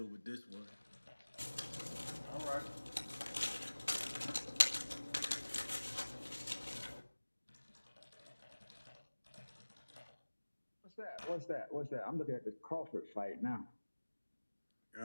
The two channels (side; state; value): both; inverted; correlation -1.00